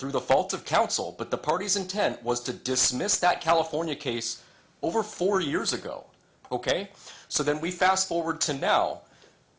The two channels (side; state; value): both; identical; correlation 1.00